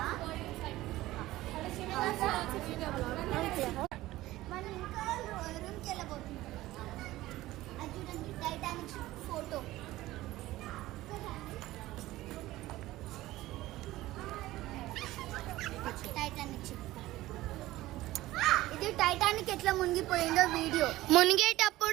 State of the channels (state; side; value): quieter; left; 16.8 dB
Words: మనం ఇంకా రూమ్కి వెళ్ళబోతున్నాం. అది చూడండి, టైటానిక్ ఫోటో. Titanic ship. ఇది టైటానిక్ ఎట్లా మునిగిపోయిందో వీడియో.